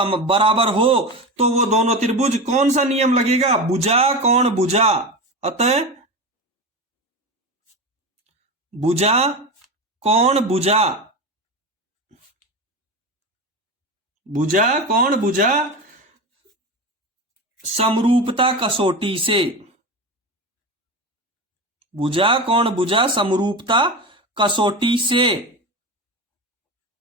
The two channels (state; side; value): normal; both; correlation 0.23